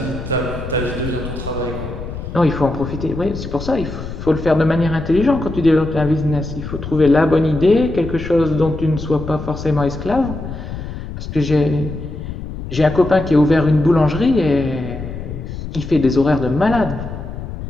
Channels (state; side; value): noise; left; rumble, 9 dB below the sound